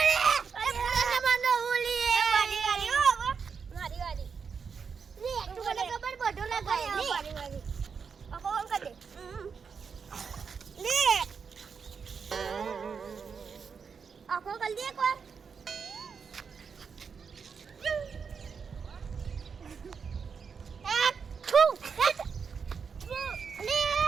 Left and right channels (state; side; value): quieter; left; 6.0 dB